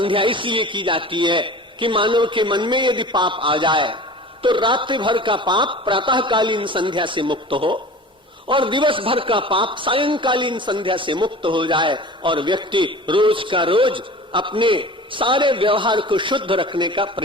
इसलिए की जाती है कि मानव के मन में यदि पाप आ जाए तो रात्रि भर का पाप प्रातःकालीन संध्या से मुक्त हो, और दिवस भर का पाप सायंकालीन संध्या से मुक्त हो जाए, और व्यक्ति रोज का रोज अपने सारे व्यवहार को शुद्ध रखने का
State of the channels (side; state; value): both; normal; correlation 0.39